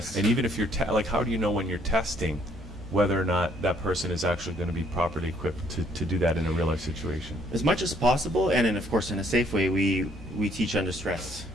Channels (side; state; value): both; normal; correlation 0.65